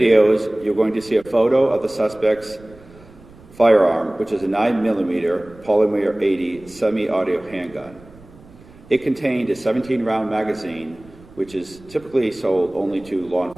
you're going to see a photo of the suspect's firearm, which is a 9mm polymer 80 semi-auto handgun. It contained a 17-round magazine, which is typically sold only to law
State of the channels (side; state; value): right; noise; rumble, 23 dB below the sound